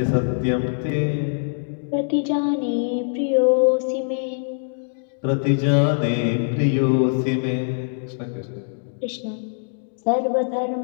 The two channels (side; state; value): right; silent; digital silence